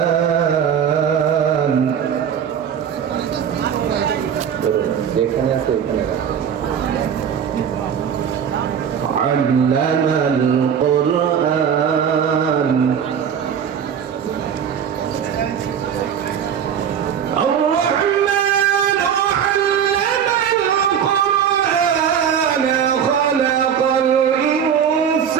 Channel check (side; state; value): left; quieter; 8.1 dB